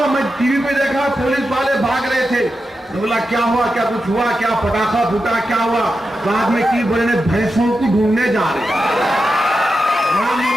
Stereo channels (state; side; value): normal; both; correlation 0.89